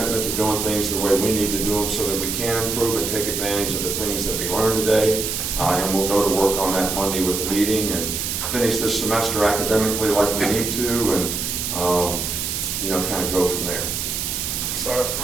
to doing things the way we need to do them so that we can improve and take advantage of the things that we learned today. And we'll go to work on that Monday with the meeting and finish this semester academically like we need to, and kind of go from there. Start up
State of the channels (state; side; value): noise; right; hiss, 2 dB below the sound